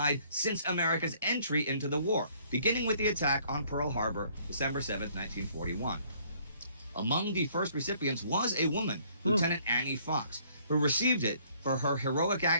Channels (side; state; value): both; inverted; correlation -0.62